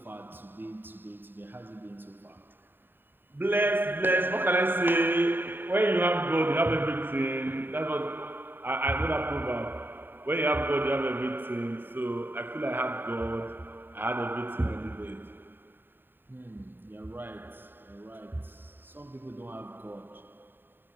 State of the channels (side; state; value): left; late; 0.095 ms